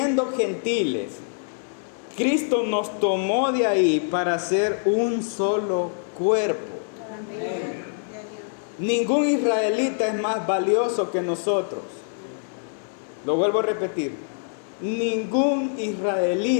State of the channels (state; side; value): silent; right; digital silence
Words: gentiles, Cristo nos tomó de ahí para ser un solo cuerpo. Amén. Ningún israelita es más valioso que nosotros. Lo vuelvo a repetir. Ningún